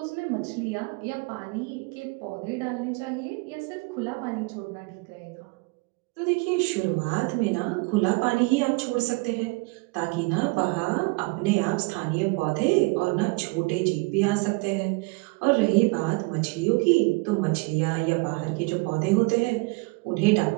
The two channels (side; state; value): left; quieter; 27.1 dB